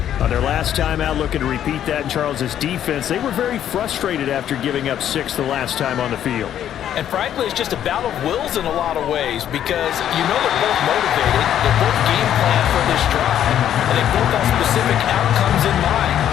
on their last time out, looking to repeat that. And Charles' defense, they were very frustrated after giving up 6 the last time on the field. And frankly, it's just a battle of wills in a lot of ways because you know they're both motivated, they're both game plan for this drive, and they both have specific outcomes in mind.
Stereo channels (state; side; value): quieter; right; 10.5 dB